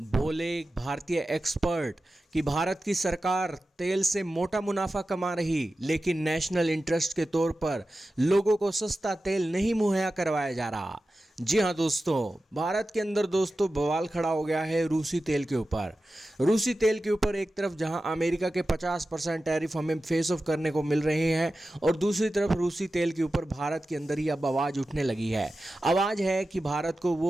भारतीय एक्सपर्ट कि भारत की सरकार तेल से मोटा मुनाफा कमा रही, लेकिन नेशनल इंटरेस्ट के तौर पर लोगों को सस्ता तेल नहीं मुहैया करवाया जा रहा। जी हाँ दोस्तों, भारत के अंदर दोस्तों बवाल खड़ा हो गया है रूसी तेल के ऊपर। रूसी तेल के ऊपर एक तरफ जहां अमेरिका के 50% टैरिफ हमें फेस ऑफ करने को मिल रहे हैं, और दूसरी तरफ रूसी तेल के ऊपर भारत के अंदर ही अब आवाज़ उठने लगी है। आवाज़ है कि भारत को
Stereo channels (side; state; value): both; normal; correlation 0.94